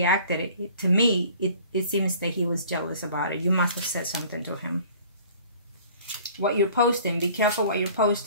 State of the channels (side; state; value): both; inverted; correlation -0.50